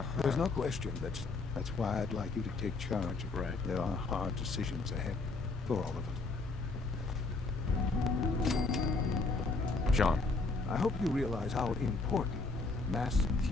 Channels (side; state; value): right; quieter; 3.7 dB